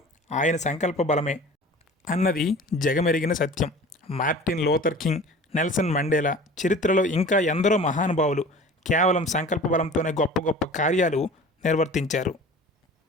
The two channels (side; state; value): both; normal; correlation 0.42